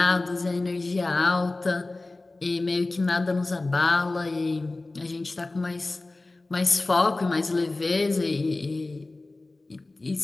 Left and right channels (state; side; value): quieter; right; 3.1 dB